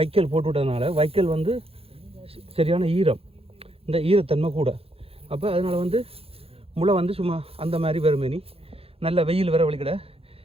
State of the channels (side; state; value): left; late; 0.28 ms